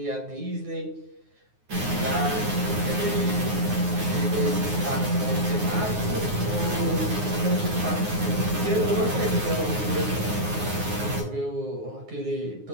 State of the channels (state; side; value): late; left; 9.5 ms